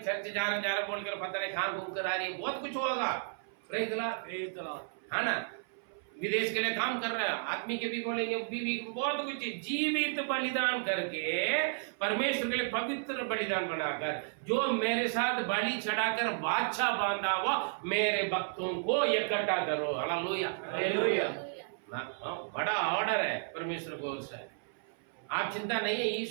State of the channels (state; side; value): silent; left; 56 dB below the other